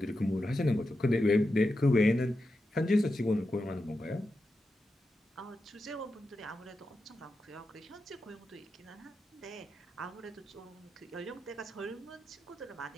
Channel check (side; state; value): both; normal; correlation 0.89